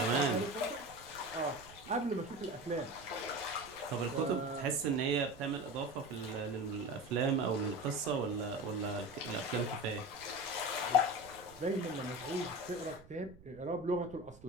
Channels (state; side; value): noise; right; rumble, 21 dB below the sound